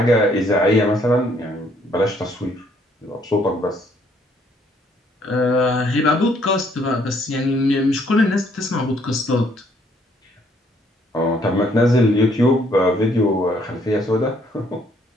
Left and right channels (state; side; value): normal; both; correlation 0.66